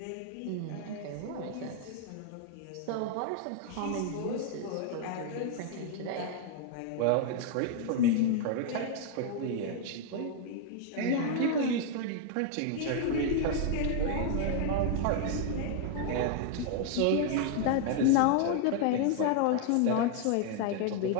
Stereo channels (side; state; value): both; different; correlation 0.00